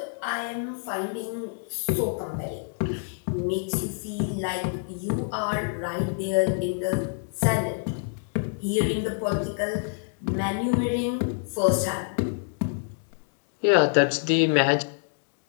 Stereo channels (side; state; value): right; silent; digital silence